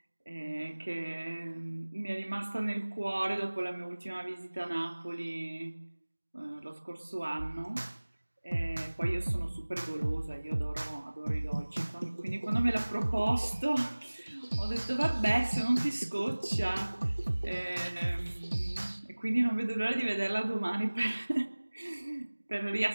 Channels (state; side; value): inverted; both; correlation -1.00